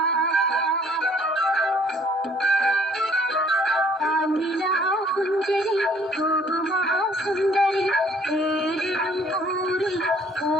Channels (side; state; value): both; normal; correlation 0.59